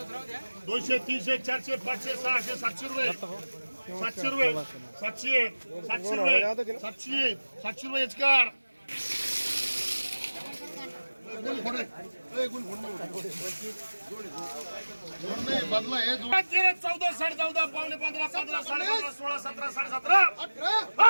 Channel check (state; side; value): inverted; both; correlation -1.00